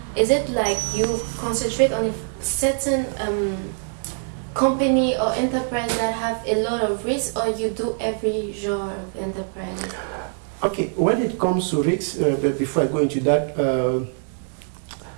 is it like you concentrate on a certain company or enterprise that have a lot of risk, or you do every genre of enterprise? Okay, when it comes to risks, but before I go into that,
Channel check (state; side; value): silent; left; digital silence